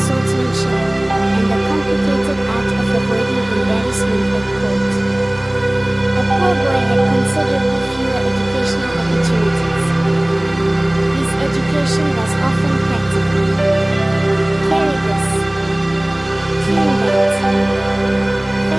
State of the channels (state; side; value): noise; right; rumble, 26 dB below the sound